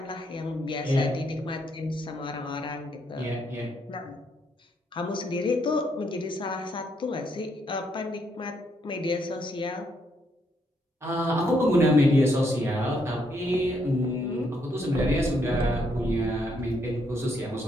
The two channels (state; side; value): normal; both; correlation 0.74